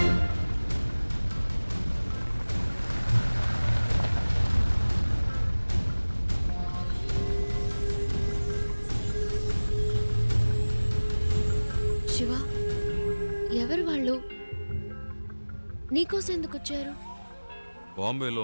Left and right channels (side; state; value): both; inverted; correlation -1.00